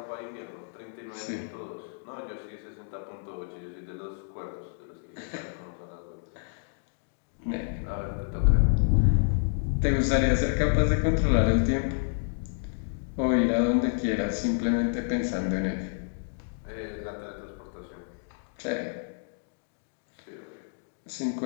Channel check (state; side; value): silent; right; digital silence